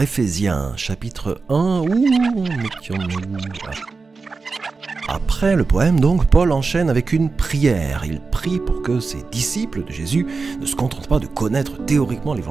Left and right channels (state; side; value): quieter; left; 4.3 dB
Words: Éphésiens, chapitre 1, mettions-nous là. Après le poème, donc, Paul enchaîne avec une prière. Il prie pour que ses disciples de Jésus ne se contentent pas de connaître théoriquement